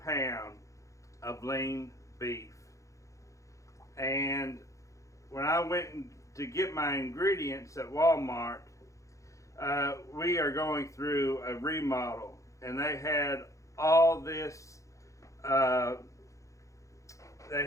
of lean beef. And when I went to get my ingredients at Walmart, we are going through a remodel, and they had all this. They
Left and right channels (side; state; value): right; late; 0.15 ms